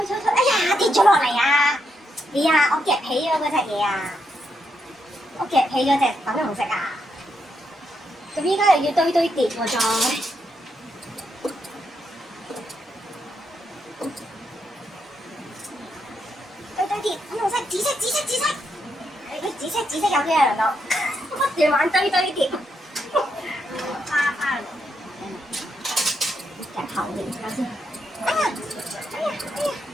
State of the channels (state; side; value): normal; both; correlation 0.80